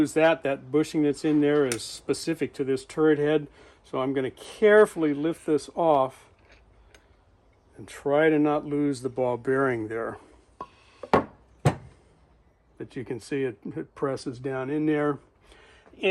that. That bushing that's in there is specific to this turret head. So I'm going to carefully lift this off and try to not lose the ball bearing there. But you can see it presses down in there.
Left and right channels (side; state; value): both; identical; correlation 1.00